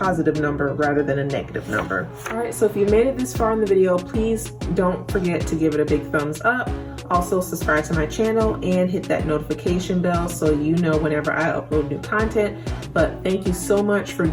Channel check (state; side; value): identical; both; correlation 1.00